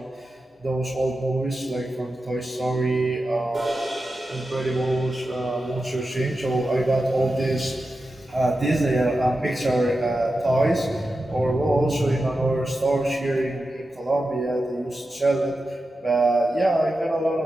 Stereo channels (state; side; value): normal; both; correlation 0.91